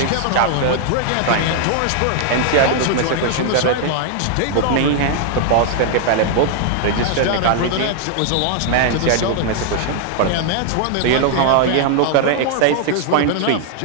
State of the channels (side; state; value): both; different; correlation 0.00